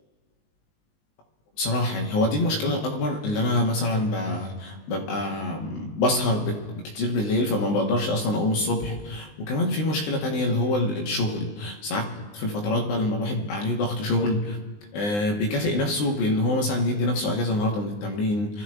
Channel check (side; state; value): right; late; 19 ms